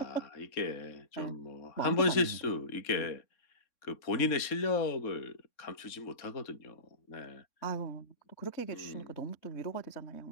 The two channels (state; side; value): late; right; 3.6 ms